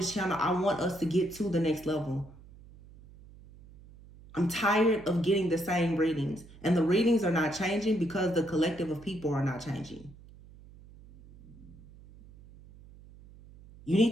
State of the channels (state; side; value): noise; right; hum, 21 dB below the sound